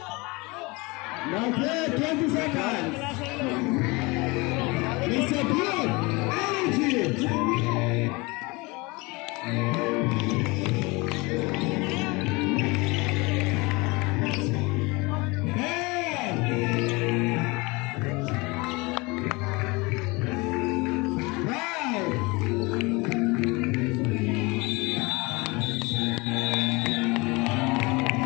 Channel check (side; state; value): right; quieter; 25.4 dB